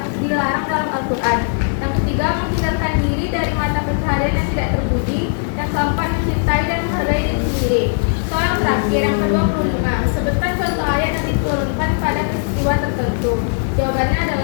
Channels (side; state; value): right; silent; digital silence